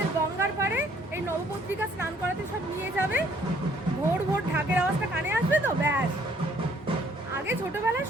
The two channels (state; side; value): normal; both; correlation 0.63